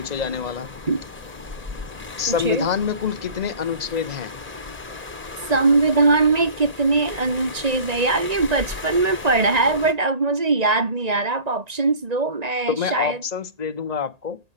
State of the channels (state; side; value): late; left; 1.8 ms